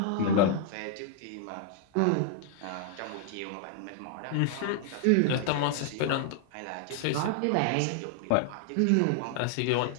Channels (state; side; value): different; both; correlation 0.00